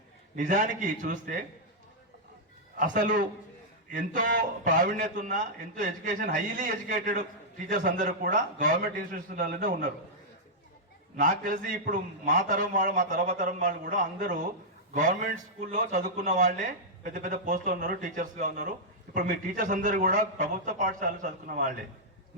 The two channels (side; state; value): both; normal; correlation -0.07